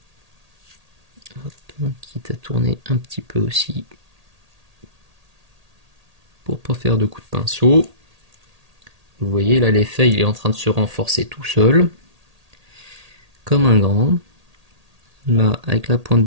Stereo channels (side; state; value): left; late; 1.8 ms